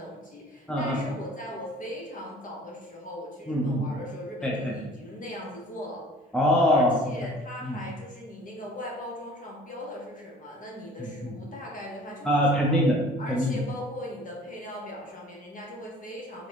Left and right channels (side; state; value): both; normal; correlation 0.49